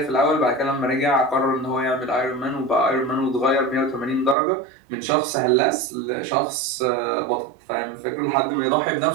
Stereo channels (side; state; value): left; drops out; at 4.4 s